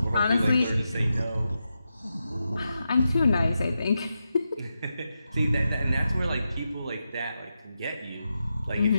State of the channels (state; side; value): inverted; both; correlation -0.88